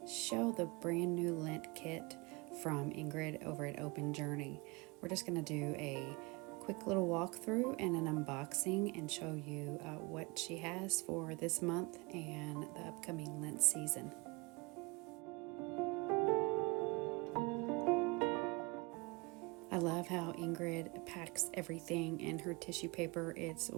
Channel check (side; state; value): left; quieter; 26.6 dB